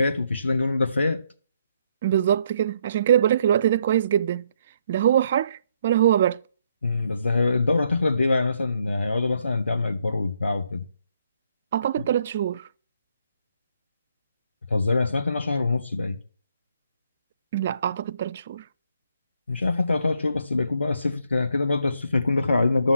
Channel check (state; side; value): inverted; both; correlation -0.72